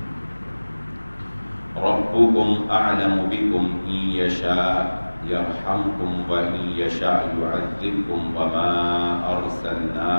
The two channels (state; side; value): inverted; both; correlation -1.00